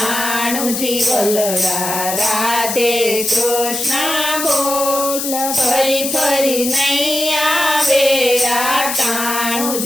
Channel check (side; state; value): left; noise; hiss, 3 dB below the sound